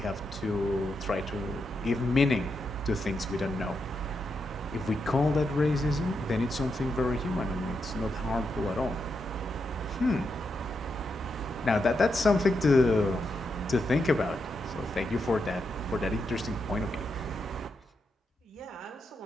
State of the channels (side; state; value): both; normal; correlation 0.84